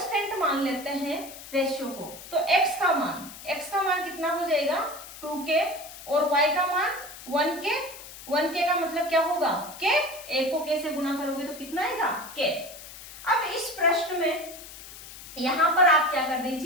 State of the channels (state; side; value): noise; left; hiss, 15 dB below the sound